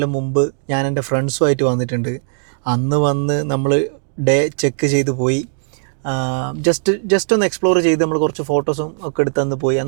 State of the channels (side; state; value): left; silent; digital silence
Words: മുമ്പ് ഞാൻ എൻ്റെ ഫ്രണ്ട്സുമായിട്ട് വന്നിട്ടുണ്ട്. അന്ന് വന്ന് നമ്മൾ ഡേ ചെക്ക് ചെയ്ത് പോയി. ജസ്റ്റ് ഒന്ന് എക്സ്പ്ലോർ ചെയ്ത് നമ്മൾ കുറച്ച് ഫോട്ടോസും ഒക്കെ എടുത്ത് അന്ന് പോയി.